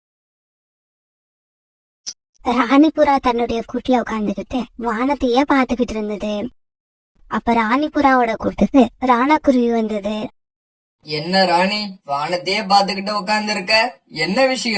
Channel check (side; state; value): both; identical; correlation 1.00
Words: ராணிபுரா தன்னுடைய கூட்டுல உட்கார்ந்துகிட்டு வானத்தையே பாத்துக்கிட்டு இருந்தது. அப்ப ராணிபுராவோட கூட்டுக்கு ராணா குருவி வந்தது. என்ன ராணி, வானத்தையே பாத்துக்கிட்டு உட்கார்ந்து இருக்க? என்ன